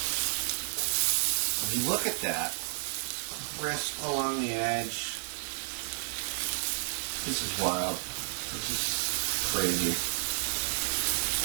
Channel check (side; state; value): left; silent; digital silence